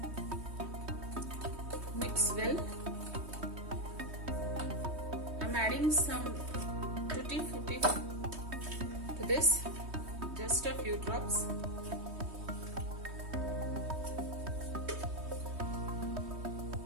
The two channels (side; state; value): left; late; 3.2 ms